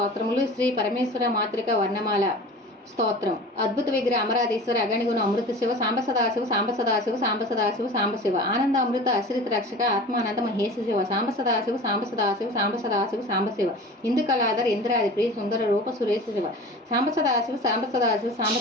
శ్రీ పరమేశ్వర మాతృక వర్ణమాల స్తోత్రం. అద్భుత విగ్రహ అమరాధీశ్వర అగణిగుణ అమృత శివ సాంబ సదాశివ సాంబ సదాశివ సాంబ సదాశివ సాంబ శివ ఆనంద అమృత అశ్రిత రక్షక ఆత్మానంద మహేశ శివ సాంబ సదాశివ సాంబ సదాశివ సాంబ సదాశివ సాంబ శివ ఇందు కళాధర్ ఇంద్రాది ప్రియ సుందర రూప సురేశ శివ సాంబ సదాశివ సాంబ సదాశివ సాంబ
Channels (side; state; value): both; normal; correlation 0.37